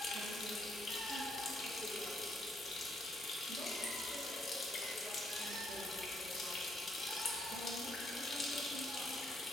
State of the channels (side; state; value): both; normal; correlation 0.73